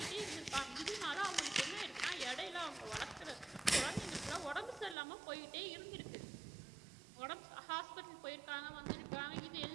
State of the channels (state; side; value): drops out; left; at 5.0 s